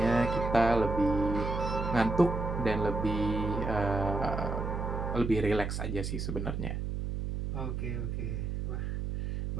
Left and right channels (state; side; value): noise; right; hum, 3 dB below the sound